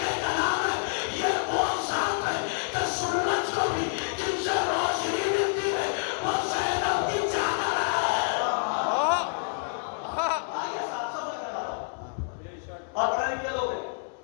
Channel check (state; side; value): silent; right; 59 dB below the other